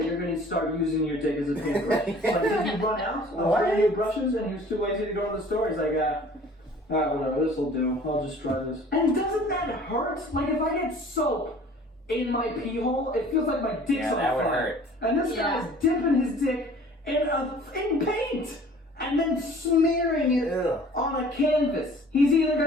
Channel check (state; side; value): normal; both; correlation 0.49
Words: you're going to start using your dick as a paintbrush? Like, did you run out of any brushes and he was too lazy to go to the store? He's like, alright, whatever, this'll do. I'll just try this. And doesn't that hurt? Like, if I get soap in my pee hole, it feels like my dick's on fire. Would hurt. And this guy is dipping his dick in paint and then smearing it on a canvas. He's either